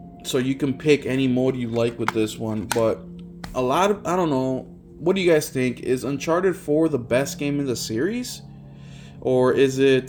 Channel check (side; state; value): both; identical; correlation 1.00